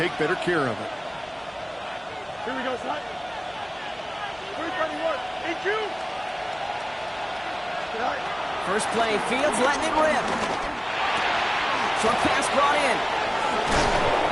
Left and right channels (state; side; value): identical; both; correlation 1.00